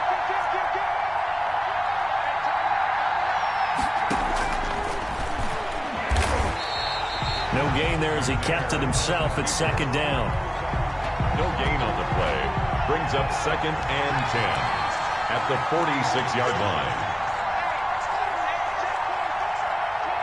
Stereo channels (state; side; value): identical; both; correlation 1.00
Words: no gain there as he kept it himself at second down. No gain on the play. Brings up 2nd and 10 at the 46-yard line.